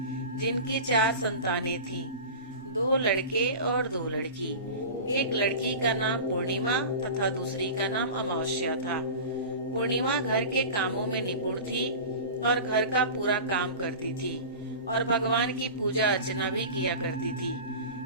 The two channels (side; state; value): both; inverted; correlation -0.33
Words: जिनकी 4 संतानें थीं, 2 लड़के और 2 लड़की। एक लड़की का नाम पूर्णिमा तथा दूसरी का नाम अमावस्या था। पूर्णिमा घर के कामों में निपुण थी और घर का पूरा काम करती थी और भगवान की पूजा अर्चना भी किया करती